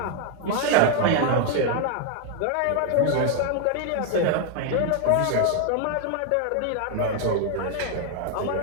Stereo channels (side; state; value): both; different; correlation 0.00